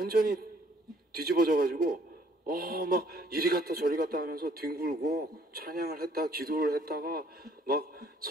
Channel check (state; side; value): normal; both; correlation 0.61